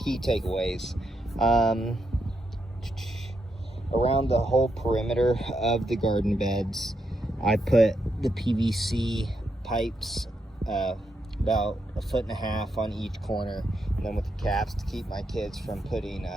key takeaways. Around the whole perimeter of the garden beds, I put the PVC pipes about 1.5 feet on each corner, and then with the caps to keep my kids from putting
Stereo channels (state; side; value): normal; both; correlation 0.82